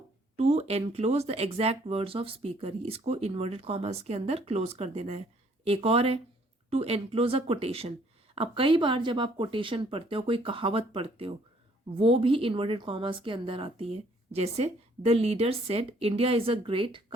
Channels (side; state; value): both; normal; correlation 0.63